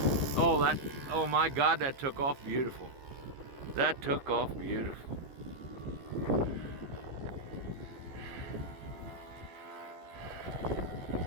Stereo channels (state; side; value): late; left; 15 ms